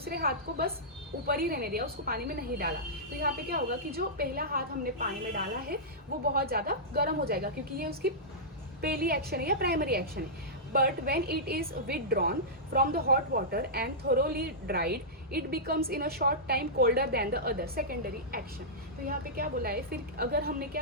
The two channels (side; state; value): both; normal; correlation -0.14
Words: हाथ को बस ऊपर ही रहने दिया, उसको पानी में नहीं डाला। तो यहाँ पे क्या होगा कि जो पहला हाथ हमने पानी में डाला है वो बहुत ज़्यादा गर्म हो जाएगा, क्योंकि ये उसकी पहली एक्शन है या प्राइमरी एक्शन है। But when it is withdrawn from the hot water and thoroughly dried, it becomes in a short time colder than the other secondary action. तो यहाँ पे क्या बोला है? फिर अगर हमने